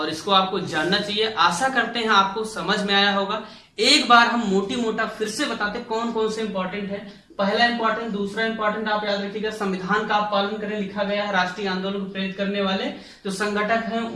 इसको आपको जानना चाहिए। आशा करते हैं आपको समझ में आया होगा। एक बार हम मोटी मोटा फिर से बताते कौन कौन से इंपॉर्टेंट है। पहला इंपॉर्टेंट, दूसरा इंपॉर्टेंट आप याद रखिएगा, संविधान का आप पालन करें, लिखा गया है। राष्ट्रीय आंदोलन को प्रेरित करने वाले जो संगठक हैं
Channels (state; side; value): identical; both; correlation 1.00